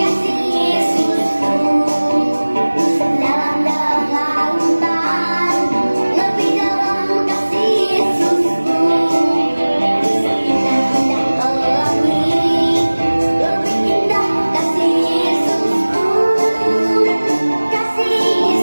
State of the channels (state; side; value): inverted; both; correlation -1.00